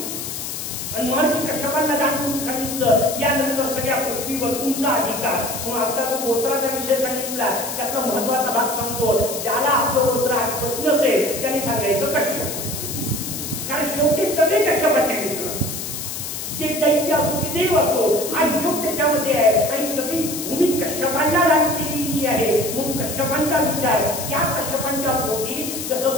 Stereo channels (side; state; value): left; noise; hiss, 6 dB below the sound